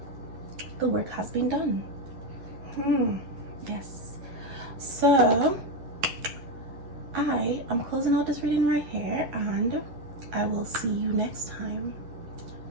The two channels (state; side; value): late; left; 11 ms